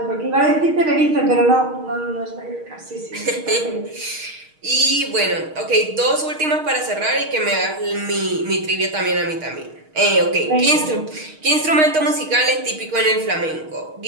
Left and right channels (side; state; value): left; late; 6.4 ms